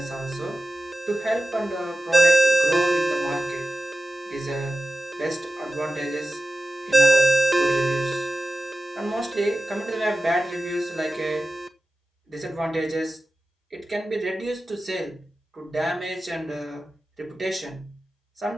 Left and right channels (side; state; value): both; normal; correlation 0.94